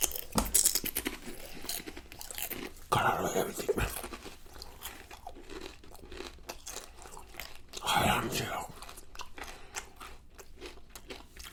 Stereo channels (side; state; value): both; identical; correlation 1.00